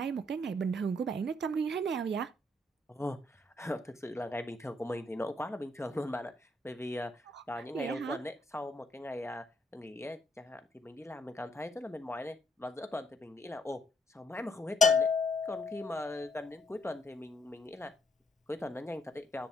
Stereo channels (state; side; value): normal; both; correlation 0.70